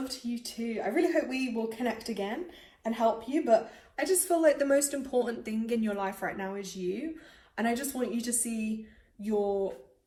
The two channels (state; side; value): identical; both; correlation 1.00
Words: to you too. I really hope we will connect again and help you. But I just feel like the most important thing in your life right now is you. And I just want you to see your